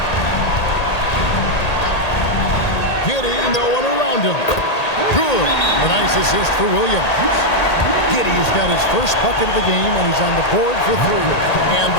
Giddy, no one around him. Good. A nice assist for Williams. Giddy's got his first bucket of the game, and he's on the board for 3. And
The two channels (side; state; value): right; late; 1.8 ms